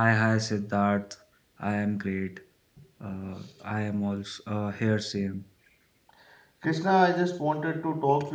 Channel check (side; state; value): both; identical; correlation 1.00